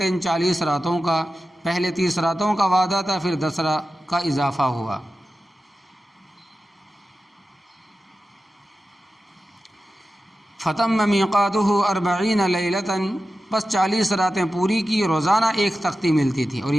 40 راتوں کا، پہلے 30 راتوں کا وعدہ تھا، پھر 10 کا اضافہ ہوا۔ فَتَمَّ مِيقَاتُهُ 40 لیلۃ، بس 40 راتیں پوری کی، روزانہ ایک تختی ملتی تھی، اور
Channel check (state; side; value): normal; both; correlation 0.93